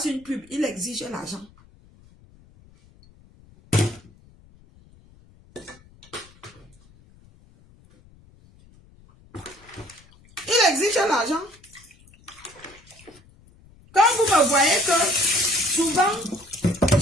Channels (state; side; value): noise; left; rumble, 27 dB below the sound